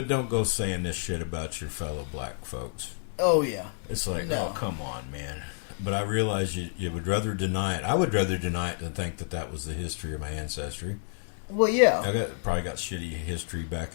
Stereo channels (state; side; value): silent; right; 58 dB below the other